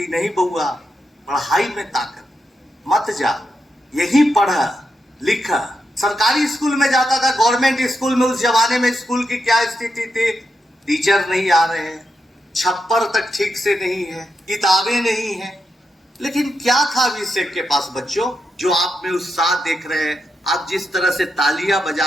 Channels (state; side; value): normal; both; correlation 0.85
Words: नहीं बउआ, पढ़ाई में ताकत, मत जा, यही पढ़ा लिखा। सरकारी स्कूल में जाता था, गवर्नमेंट स्कूल में। उस जमाने में स्कूल की क्या स्थिति थी, टीचर नहीं आ रहे हैं, छप्पर तक ठीक से नहीं है, किताबें नहीं है। लेकिन क्या था अभिषेक के पास बच्चों, जो आप में उत्साह देख रहे हैं, आप जिस तरह से तालियां